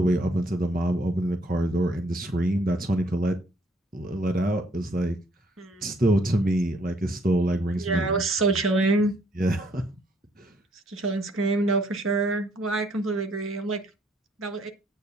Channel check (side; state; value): both; normal; correlation 0.67